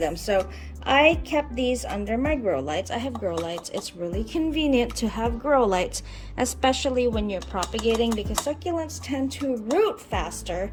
So I kept these under my grow lights. I have grow lights. It's really convenient to have grow lights, especially when you're propagating, because succulents tend to root faster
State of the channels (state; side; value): identical; both; correlation 1.00